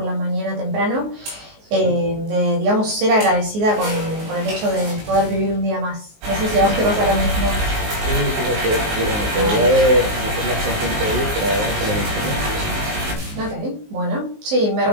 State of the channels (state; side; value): late; left; 19 ms